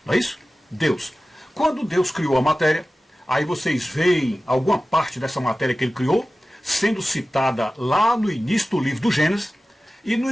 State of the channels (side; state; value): both; normal; correlation 0.96